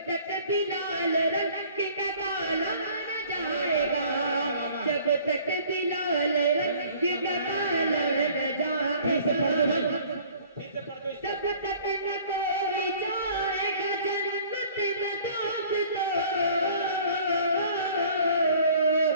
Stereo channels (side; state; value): both; inverted; correlation -0.52